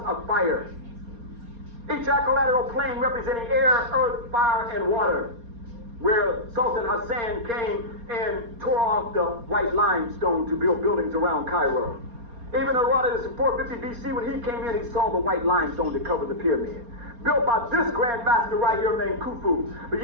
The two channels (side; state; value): left; late; 4.3 ms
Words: of fire. Each equilateral plane representing air, earth, fire, and water, where Sultan Hassan came and tore off the white limestone to build buildings around Cairo. Even Herodotus in 450 BC, when he came in, he saw the white limestone that covered the pyramid. Built by this Grand Master right here named Khufu. But